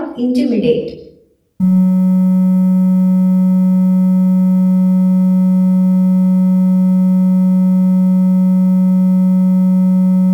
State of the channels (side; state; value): both; identical; correlation 1.00